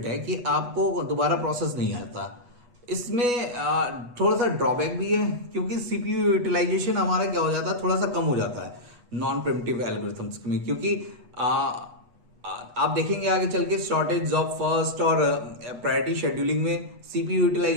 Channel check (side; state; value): left; late; 8.2 ms